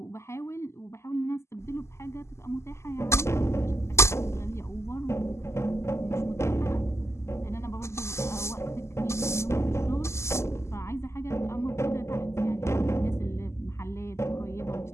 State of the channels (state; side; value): late; right; 0.13 ms